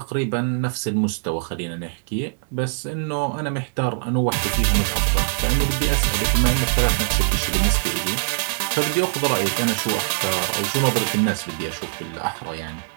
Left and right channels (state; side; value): silent; left; digital silence